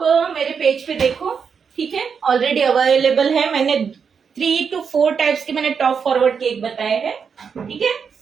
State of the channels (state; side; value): quieter; left; 6.3 dB